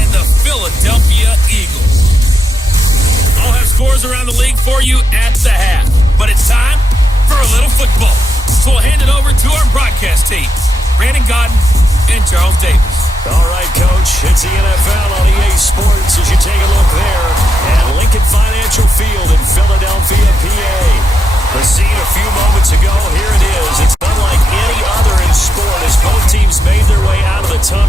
the Philadelphia Eagles. I'll have scores around the league for you at the half, but it's time for a little football. So we'll hand it over to our broadcast team, Brandon Godden and Charles Davis. All right, Coach, it's the NFL on EA Sports as you take a look there at Lincoln Financial Field in Philadelphia, PA. The scene a few moments ago, here it is. It's unlike any other in sport as both teams made their way out of the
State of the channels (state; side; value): normal; both; correlation 0.85